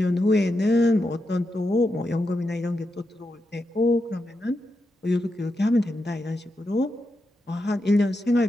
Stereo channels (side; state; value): both; normal; correlation 0.86